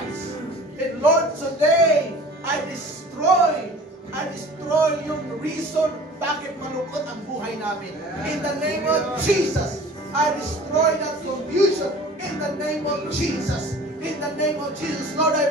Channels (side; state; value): both; normal; correlation 0.44